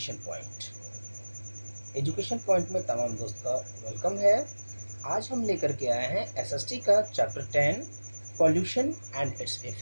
Point. Education Point में तमाम दोस्त का वेलकम है। आज हम लेकर के आए हैं एसएसटी का chapter 10 pollution and its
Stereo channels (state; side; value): inverted; both; correlation -1.00